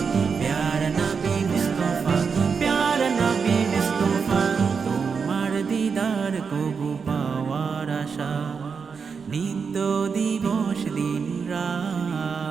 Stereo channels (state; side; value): quieter; left; 5.7 dB